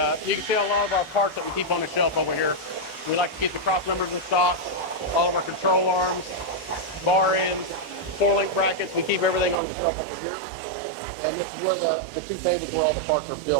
you can see a lot of our parts that we keep on the shelf over here. We like to keep the cross members in stock, all of our control arms, bar ends, 4-link brackets. We keep everything on the shelf over here. And this is where the 2 tables where all the parts are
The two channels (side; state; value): left; drops out; at 9.6 s